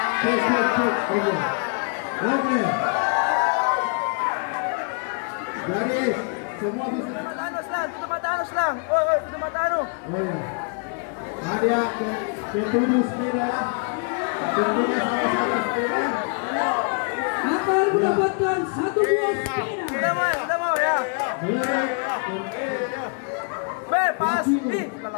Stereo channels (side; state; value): right; quieter; 39.3 dB